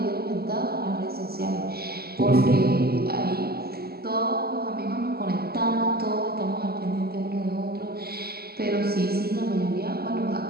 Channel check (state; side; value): late; left; 0.45 ms